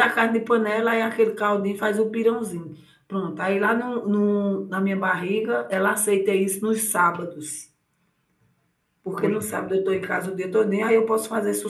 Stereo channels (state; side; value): identical; both; correlation 1.00